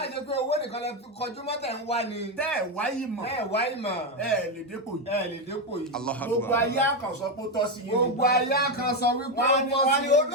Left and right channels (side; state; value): both; normal; correlation 0.08